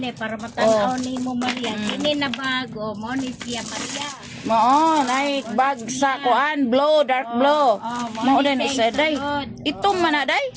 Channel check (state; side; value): identical; both; correlation 1.00